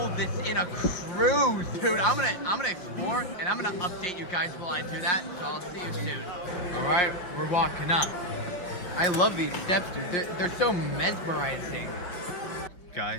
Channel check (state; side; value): late; right; 5.4 ms